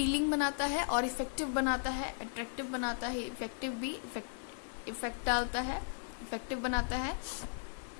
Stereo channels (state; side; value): silent; right; 54 dB below the other